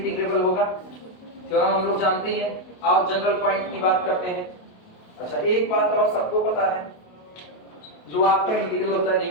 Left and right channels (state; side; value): late; right; 28 ms